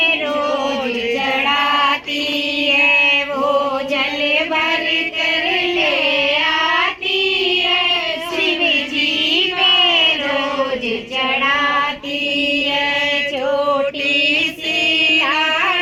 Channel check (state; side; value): identical; both; correlation 1.00